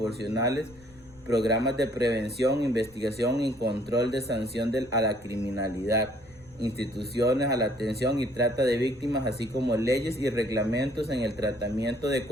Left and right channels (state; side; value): noise; left; rumble, 25 dB below the sound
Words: programas de prevención, investigación y control de sanción a la criminalidad, instituciones a la atención y trata de víctimas, así como leyes y reglamentos en el tratamiento de